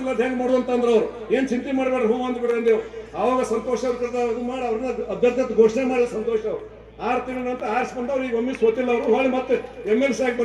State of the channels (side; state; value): both; identical; correlation 1.00